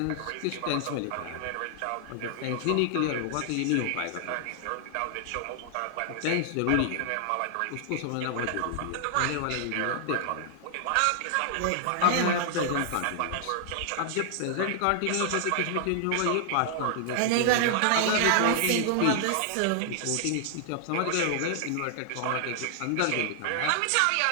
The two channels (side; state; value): both; different; correlation 0.00